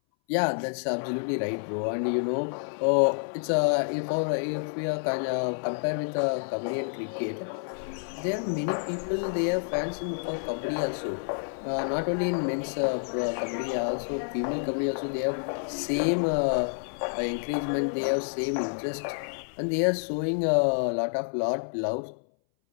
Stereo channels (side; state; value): right; silent; 59 dB below the other